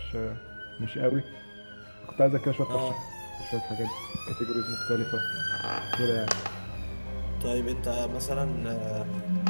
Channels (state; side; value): inverted; both; correlation -1.00